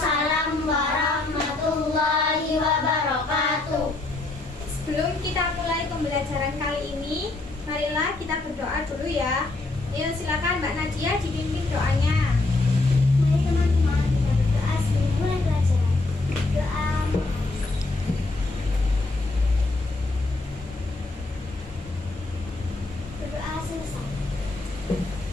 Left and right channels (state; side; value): quieter; right; 3.1 dB